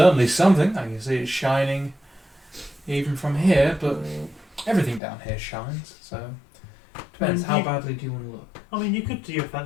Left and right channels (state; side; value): drops out; right; at 5.0 s